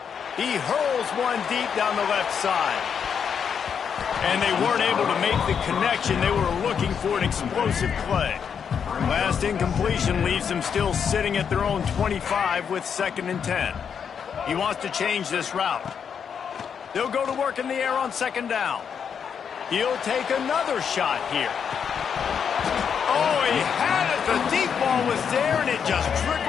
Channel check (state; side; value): quieter; right; 7.2 dB